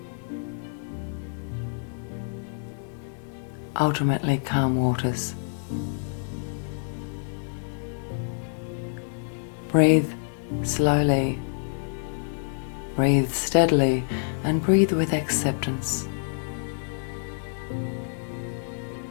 Ultimately, calm waters. Breathe slowly, breathe steadily, and breathe with acceptance.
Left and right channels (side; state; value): right; silent; digital silence